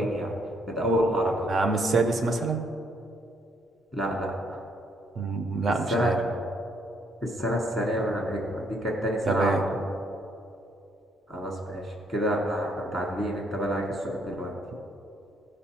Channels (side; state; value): both; normal; correlation 0.70